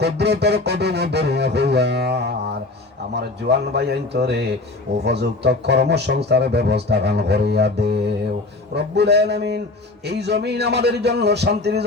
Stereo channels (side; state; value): right; quieter; 3.2 dB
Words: কুদরতের কদম ধরিয়া হইয়ার আমার জওয়ান ভাইয়ান তোরে উপযুক্ত কর্মসংস্থার ব্যবস্থা গান করিয়া দেও রব্বুল আলামিন এই জমিন আমাদের জন্য শান্তির